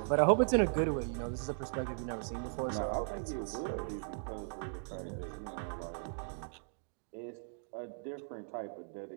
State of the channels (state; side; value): silent; left; digital silence